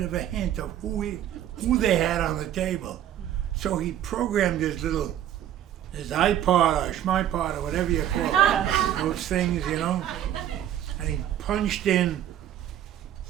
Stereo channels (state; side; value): quieter; left; 11.2 dB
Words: of a hint of who they had on the table. So he programmed his iPod or schmipod or whatever you call it, those things, and he punched in